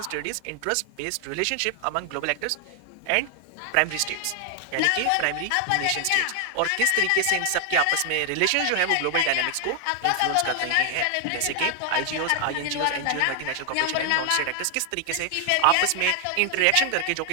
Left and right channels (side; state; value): both; different; correlation 0.00